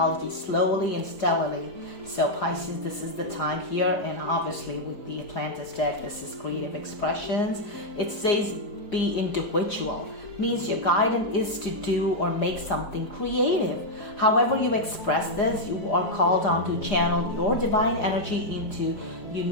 slowly and steadily. So Pisces, this is the time here. And obviously with the Atlantis deck, this is creative expressions. It says be individual. Means your guidance is to do or make something creative. However you express this, you are called on to channel your divine energy into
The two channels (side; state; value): right; late; 4.9 ms